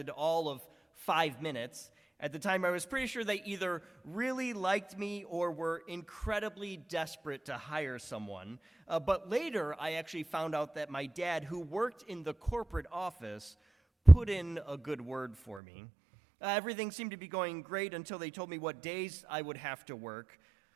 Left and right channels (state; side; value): drops out; left; at 15.6 s